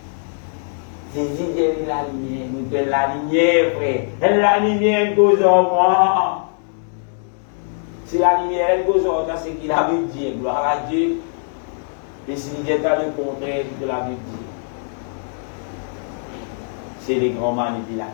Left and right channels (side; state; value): right; silent; digital silence